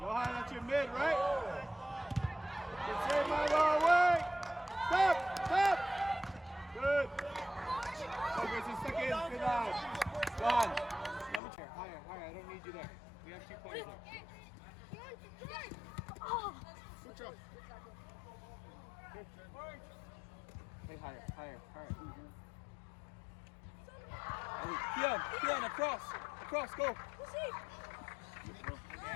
that's your mid, right? Good save, Milo. Away. Stop. Good. Okay, so second. Good line. Johan, number chair. Higher. I don't need you there. We have 2 points there. Switch up. Hey, higher. Keon, across, go.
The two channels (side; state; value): right; drops out; at 11.4 s